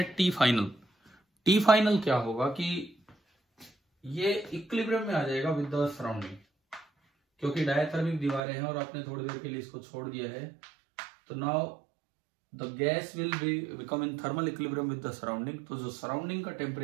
T फाइनल। T फाइनल क्या होगा कि ये इक्विलिब्रियम में आ जाएगा विद द सराउंडिंग, क्योंकि डायथर्मिक दीवारें हैं और आपने थोड़ी देर के लिए इसको छोड़ दिया है। तो now the gas will become in thermal equilibrium with the surrounding. तो जो सराउंडिंग का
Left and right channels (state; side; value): drops out; left; at 8.4 s